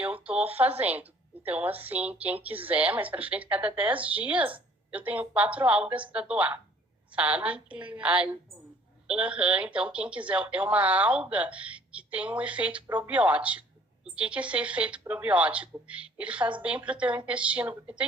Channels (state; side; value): normal; both; correlation 0.56